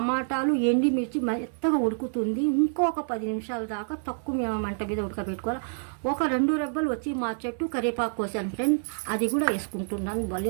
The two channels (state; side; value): silent; left; digital silence